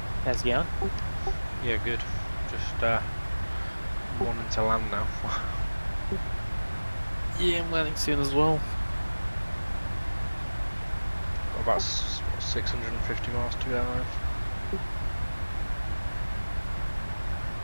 How's it going? Yeah, good. Just wanting to land now. Yeah, I'm landing soon as well. About 650 miles to go.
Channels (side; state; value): both; inverted; correlation -1.00